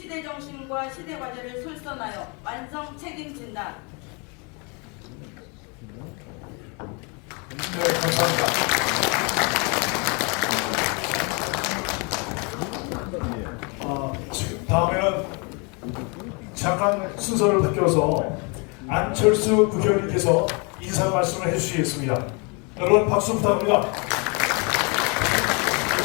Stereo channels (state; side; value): quieter; right; 32.3 dB